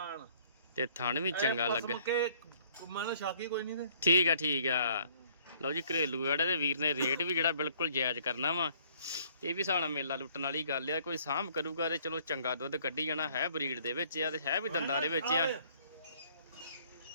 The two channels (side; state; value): both; inverted; correlation -0.61